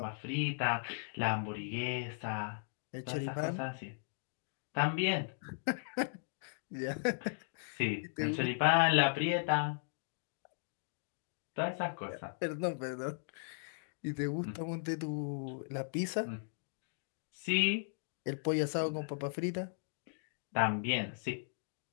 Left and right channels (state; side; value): silent; right; digital silence